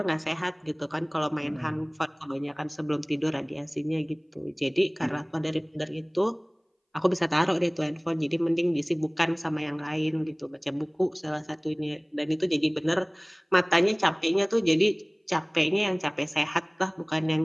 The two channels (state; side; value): identical; both; correlation 1.00